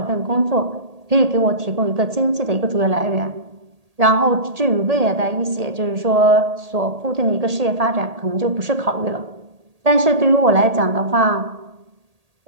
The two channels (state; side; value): late; left; 1.8 ms